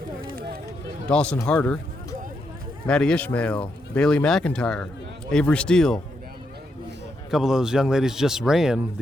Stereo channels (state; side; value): normal; both; correlation 0.81